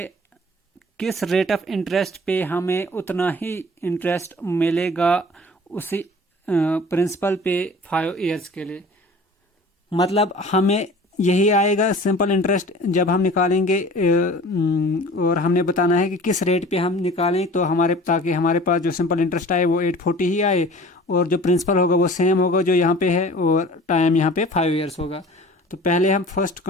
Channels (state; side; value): normal; both; correlation 0.44